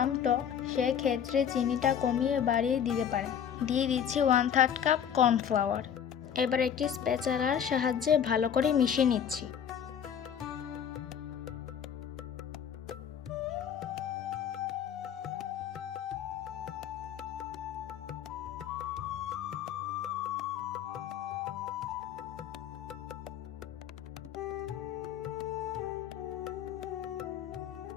টক, সেক্ষেত্রে চিনিটা কমিয়ে বাড়িয়ে দিতে পারেন। দিয়ে দিচ্ছি 1/3 কাপ কর্নফ্লাওয়ার। এবার একটি স্প্যাচারার সাহায্যে ভালো করে মিশিয়ে নিচ্ছি।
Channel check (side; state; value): right; quieter; 8.5 dB